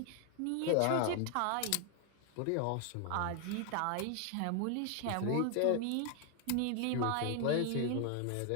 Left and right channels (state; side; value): different; both; correlation 0.00